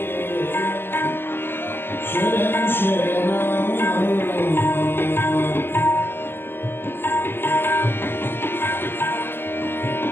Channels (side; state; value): right; late; 0.10 ms